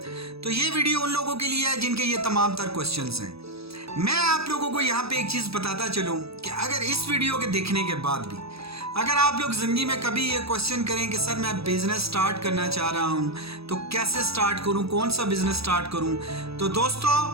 तो ये वीडियो उन लोगों के लिए है जिनके ये तमाम तर क्वेश्चंस हैं। मैं आप लोगों को यहाँ पे एक चीज़ बताता चलूँ कि अगर इस वीडियो के देखने के बाद भी अगर आप लोग ज़िंदगी में कभी ये क्वेश्चन करें कि सर मैं बिज़नेस स्टार्ट करना चाह रहा हूँ तो कैसे स्टार्ट करूँ, कौन सा बिज़नेस स्टार्ट करूँ, तो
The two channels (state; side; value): late; left; 0.78 ms